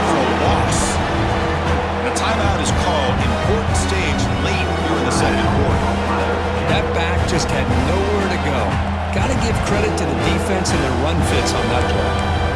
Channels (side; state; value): both; identical; correlation 1.00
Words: for a loss. And a timeout is called. Important stage late here in the second quarter. That back just had nowhere to go. Got to give credit to the defense and their run fits on that play.